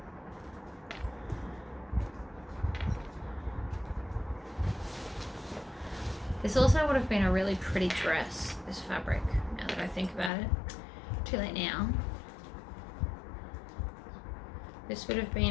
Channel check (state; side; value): drops out; right; at 10.3 s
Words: This also would have been a really pretty dress, this fabric, now that I think about it. Too late now. This would have